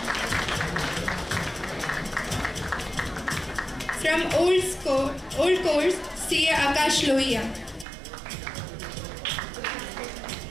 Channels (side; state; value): left; drops out; at 7.9 s